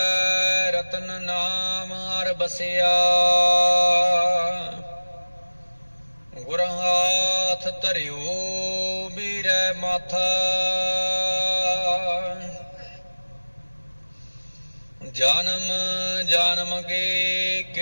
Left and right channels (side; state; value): both; inverted; correlation -1.00